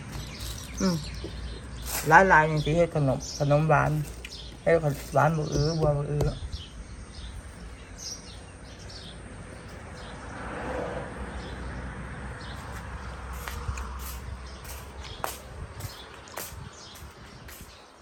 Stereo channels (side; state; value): both; identical; correlation 1.00